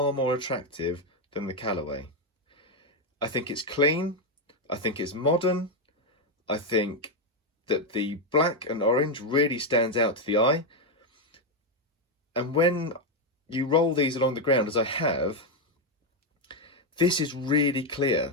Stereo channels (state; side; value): normal; both; correlation 0.04